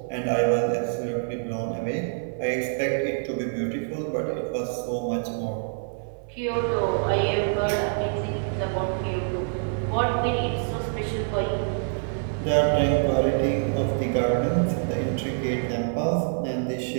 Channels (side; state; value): left; silent; 61 dB below the other